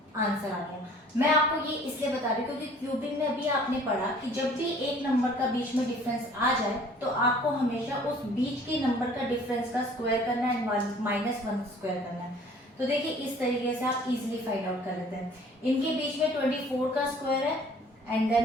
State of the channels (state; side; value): normal; both; correlation 0.53